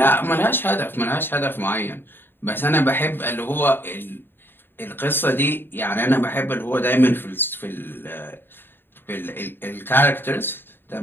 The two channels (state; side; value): late; right; 0.10 ms